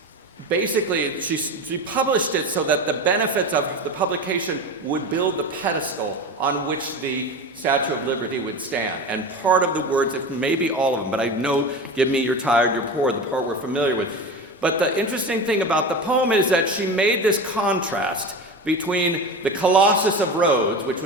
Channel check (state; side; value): normal; both; correlation 0.27